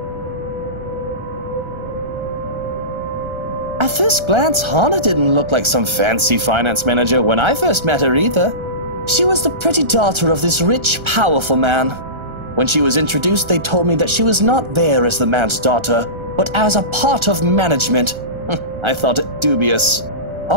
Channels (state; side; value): late; left; 1.3 ms